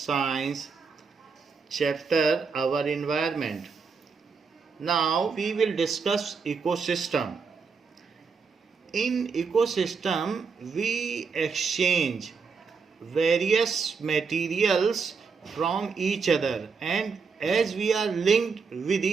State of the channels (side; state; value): left; quieter; 5.3 dB